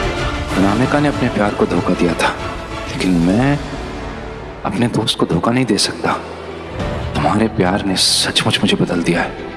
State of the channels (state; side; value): identical; both; correlation 1.00